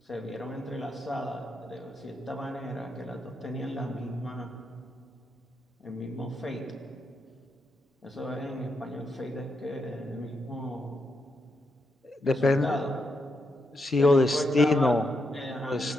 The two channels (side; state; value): both; normal; correlation 0.82